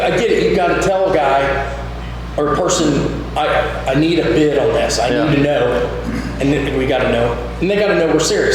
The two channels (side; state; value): both; identical; correlation 1.00